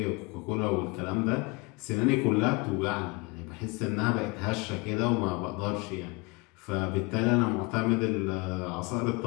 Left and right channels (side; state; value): right; quieter; 26.4 dB